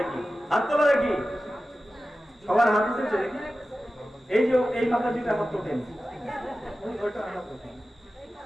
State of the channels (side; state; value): both; normal; correlation 0.95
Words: হাত তোলো দেখি। সবার হাত উঠেছে দেখি? এই যে এই মাতাজিটা হাত তোলেন,